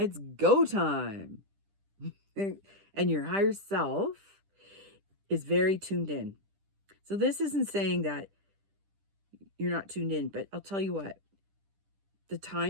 go time. And your higher self is very tuned in. So this isn't saying that you're not tuned in, but I'll tell you what. The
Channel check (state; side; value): late; left; 10 ms